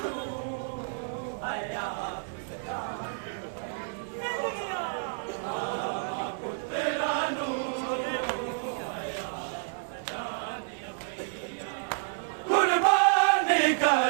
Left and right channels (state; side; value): silent; left; digital silence